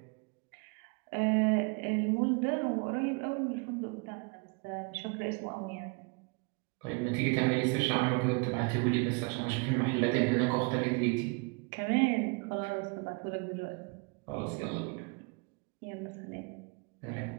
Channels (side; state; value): left; quieter; 31.8 dB